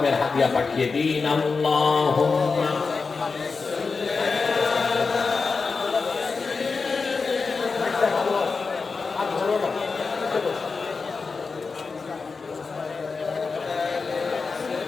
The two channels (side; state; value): right; quieter; 4.6 dB